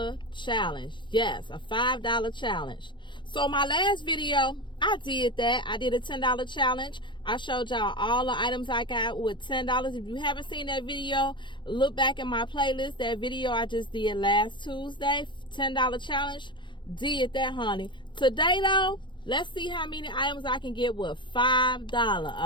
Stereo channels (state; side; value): late; right; 0.23 ms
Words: challenge. Yes, a $5 challenge. So my last video, I did that. I did a $10 challenge. I showed y'all all the items I got with $10. If you haven't seen that video, look back in my playlist. That video I just did last Tuesday, $10 challenge. Did that, honey. Today though, let's see how many items I can get with $5.